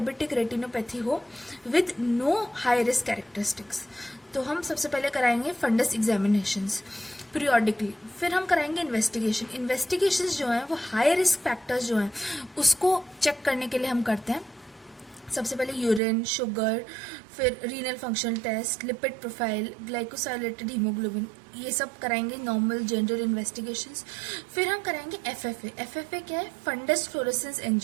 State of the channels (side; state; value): left; drops out; at 16.0 s